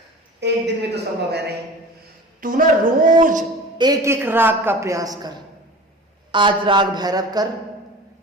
एक दिन में तो संभव है नहीं। तू ना रोज एक एक राग का प्रयास कर। आज राग भैरव कर,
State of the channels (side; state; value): both; normal; correlation 0.37